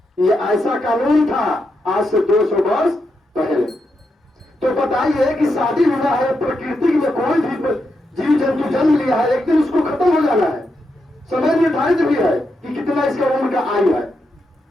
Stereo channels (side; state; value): both; normal; correlation 0.84